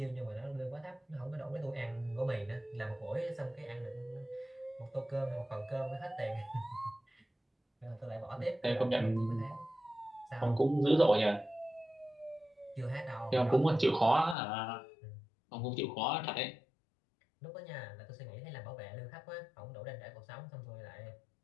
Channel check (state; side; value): drops out; right; at 14.4 s